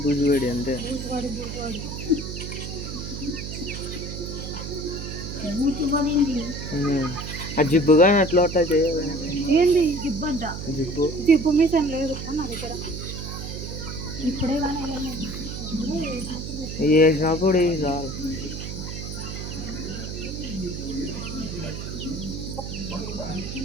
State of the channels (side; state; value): right; noise; hum, 7 dB below the sound